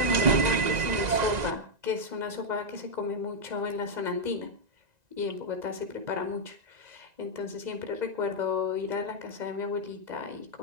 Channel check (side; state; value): left; late; 2.0 ms